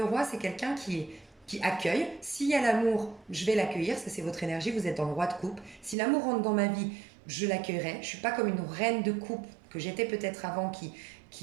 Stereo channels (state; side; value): drops out; left; at 6.0 s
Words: roi, c'est quelqu'un qui accueille. S'il y a l'amour, je vais l'accueillir. Ça, c'est votre énergie. Vous êtes dans le roi de coupe. Si l'amour rentre dans ma vie, je l'accueillerai. Je ne suis pas comme une reine de coupe que j'étais peut-être avant